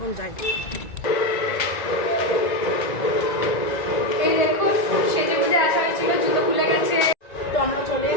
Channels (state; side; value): late; right; 1.9 ms